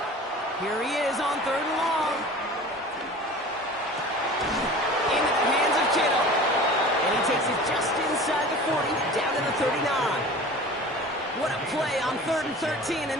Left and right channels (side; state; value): both; normal; correlation 0.40